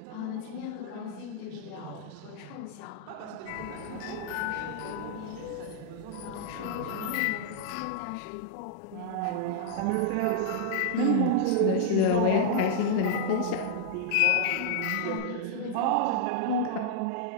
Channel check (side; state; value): both; different; correlation -0.01